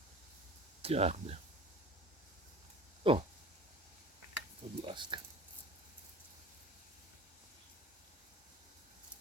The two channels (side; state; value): both; normal; correlation 0.40